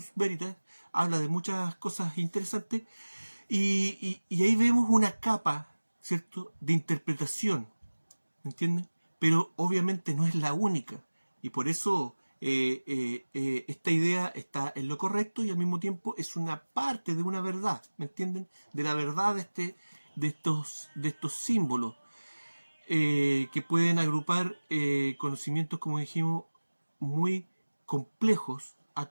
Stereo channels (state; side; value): inverted; both; correlation -1.00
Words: Veritas, habla de muchas cosas interesantes. Y ahí vemos una capa, ¿cierto?, de interpretación, ¿me entiendes? Pero obviamente no es la única. Y por eso esta idea está en lo correcto y al mismo tiempo es una parte de una verdad, ¿me entienden? De la verdad de estos símbolos que pueden agrupar conocimientos, como dijimos, muy complejos a